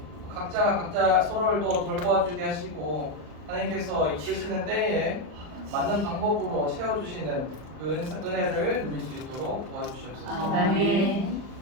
각자가 각자 서로를 또 돌보아주게 하시고 하나님께서 이끄시는 때에 맞는 방법으로 채워주시는 그 은혜를 누릴 수 있도록 도와주시옵소서.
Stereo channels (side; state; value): left; late; 39 ms